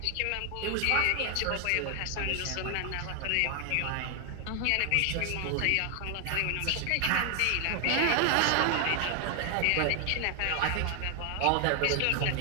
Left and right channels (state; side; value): different; both; correlation 0.00